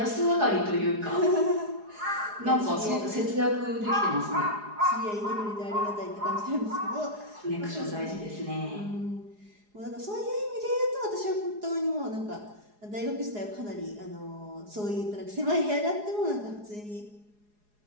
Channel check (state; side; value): late; left; 4.8 ms